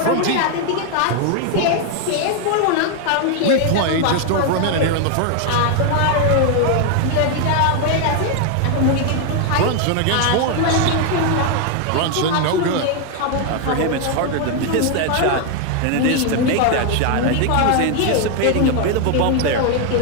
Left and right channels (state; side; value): different; both; correlation 0.01